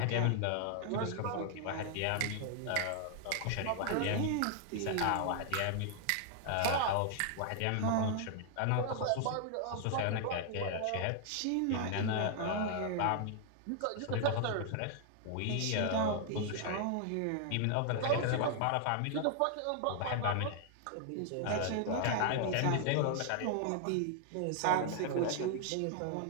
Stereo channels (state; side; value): different; both; correlation 0.00